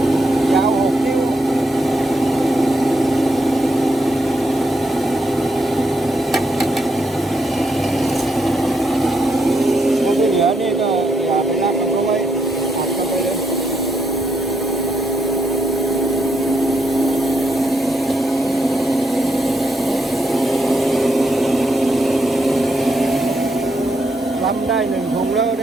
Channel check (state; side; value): normal; both; correlation 0.79